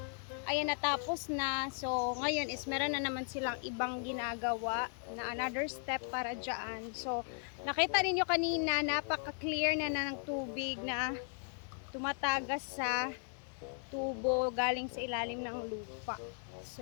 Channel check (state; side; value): silent; right; 53 dB below the other